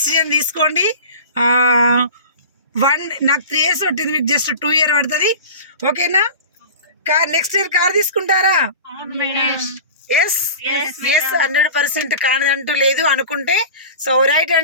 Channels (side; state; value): both; inverted; correlation -0.36